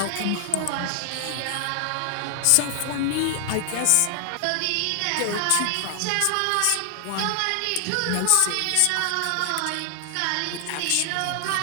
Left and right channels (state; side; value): different; both; correlation 0.00